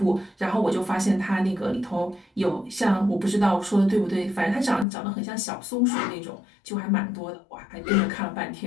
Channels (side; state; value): right; drops out; at 4.9 s